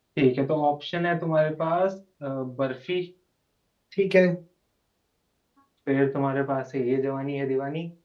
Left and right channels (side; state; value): both; identical; correlation 1.00